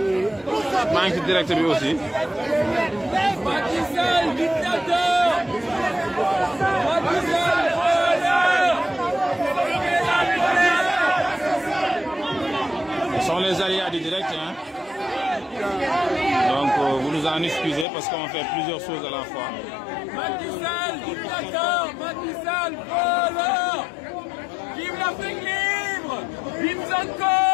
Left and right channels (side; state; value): right; drops out; at 17.9 s